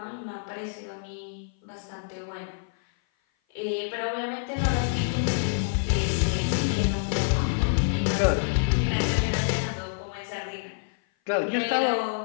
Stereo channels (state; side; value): silent; right; 56 dB below the other